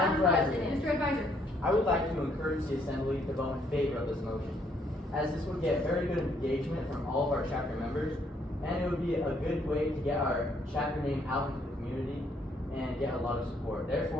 President. Mr. Advisor. I would like to encourage the Assembly to vote in favor of this motion, as this would get very good engagement from all of our chapter members, and it would be a good way to get our chapter name out into the community and get a lot of support.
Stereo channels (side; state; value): both; normal; correlation 0.69